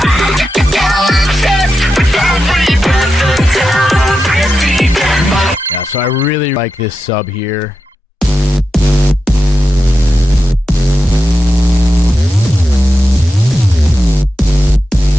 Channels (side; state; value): both; normal; correlation 0.89